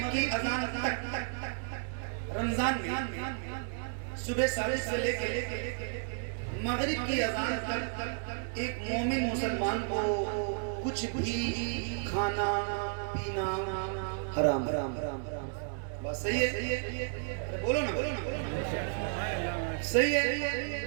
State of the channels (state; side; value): silent; left; 56 dB below the other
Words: की अजान तक रमजान में सुबह सादिक से लेकर मगरिब की अजान तक एक मोमिन मुसलमान को कुछ भी खाना पीना हराम हराम हराम बस सही है। बोलो ना सही है।